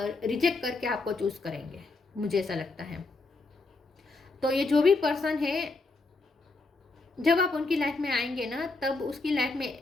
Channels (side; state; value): right; quieter; 3.6 dB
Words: करके आपको चूज करेंगे, मुझे ऐसा लगता है। तो ये जो भी पर्सन है जब आप उनकी लाइफ में आएंगे ना, तब उसकी लाइफ में